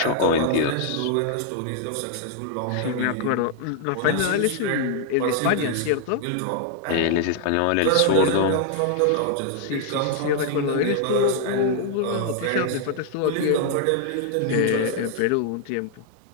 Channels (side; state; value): both; different; correlation 0.00